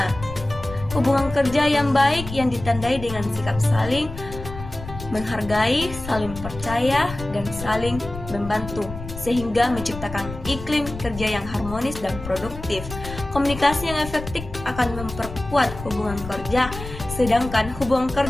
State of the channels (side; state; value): left; noise; rumble, 11 dB below the sound